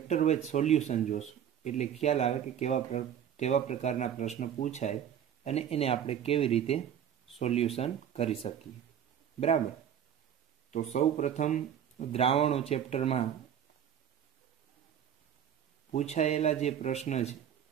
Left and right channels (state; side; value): quieter; left; 9.3 dB